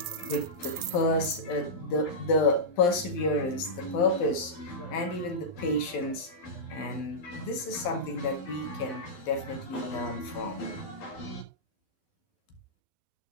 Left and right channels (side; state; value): right; late; 11 ms